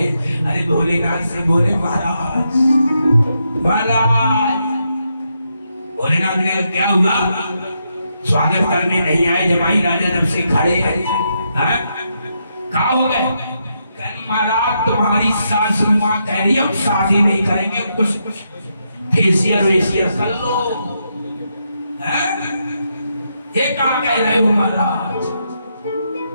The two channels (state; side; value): inverted; both; correlation -0.81